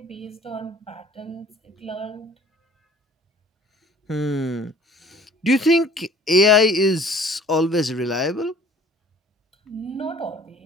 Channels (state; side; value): normal; both; correlation 0.51